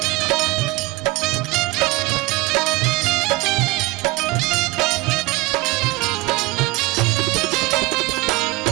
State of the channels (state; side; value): quieter; left; 21.8 dB